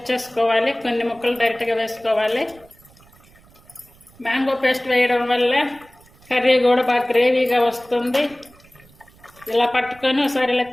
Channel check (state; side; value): noise; right; rumble, 27 dB below the sound